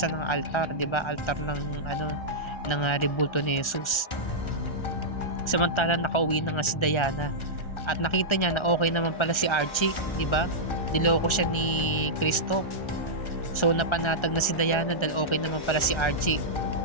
ng altar, 'di ba? Altar ng ng rebulto ni Jesus. Samantala nakauwi na nga si Diana at nakita niya na okay naman pala si Archie, 'di ba? Niloko siya ni Christoph. So napanatag na si Diana dahil okay naman pala si Archie.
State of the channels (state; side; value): late; right; 1.3 ms